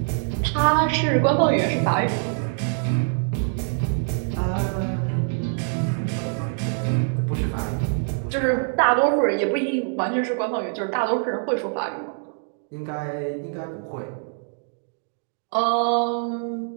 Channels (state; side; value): silent; left; 62 dB below the other